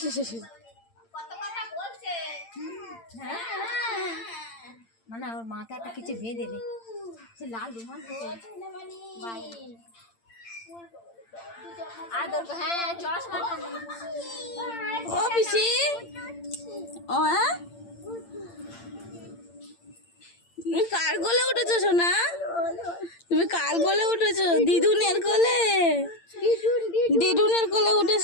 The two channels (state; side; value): late; right; 8.8 ms